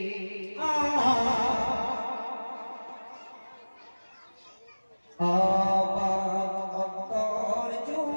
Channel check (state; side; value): inverted; both; correlation -1.00